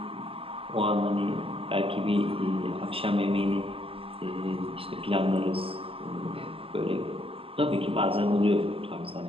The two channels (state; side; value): late; left; 0.27 ms